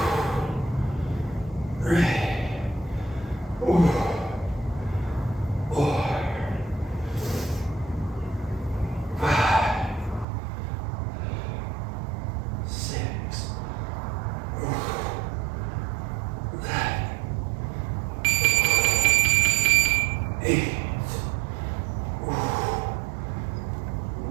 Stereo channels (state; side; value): drops out; left; at 10.2 s